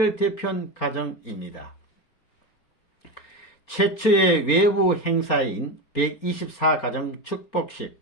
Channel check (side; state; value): right; late; 4.4 ms